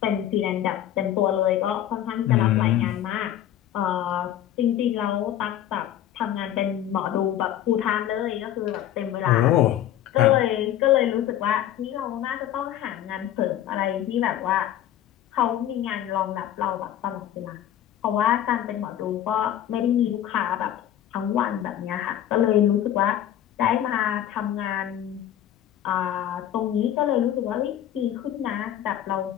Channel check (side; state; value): right; quieter; 11.5 dB